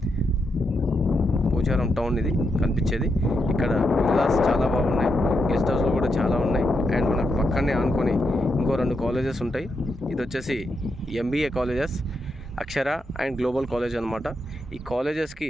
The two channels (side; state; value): both; normal; correlation 0.83